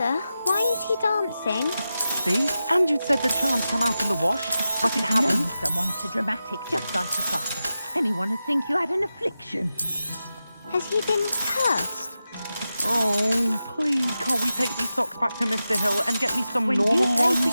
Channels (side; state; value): both; inverted; correlation -0.92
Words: why is he dancing? See? And you'd said the charms come out in the wash, but it hasn't. Known someone so dramatic, just like your father. Anyone would think you had an affliction. Has he been cursed? Oh, please, can't we take these socks back to Mr. Hill and get me some When normal you pay ones? for